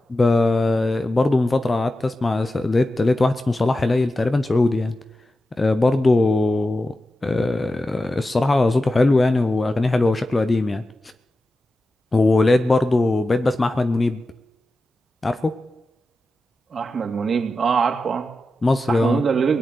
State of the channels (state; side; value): normal; both; correlation 0.92